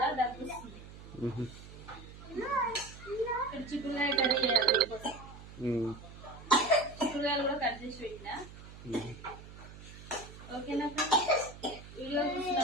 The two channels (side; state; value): right; noise; hum, 16 dB below the sound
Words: దగ్గుస్తుంది. ఇక్కడ చిక్కుడుకాయ కర్రీ చేయాలి. చిక్కుడుకాయలు కూడా కట్ చేసి పెట్టినా. ఓకేనా? వీడియో చూసిన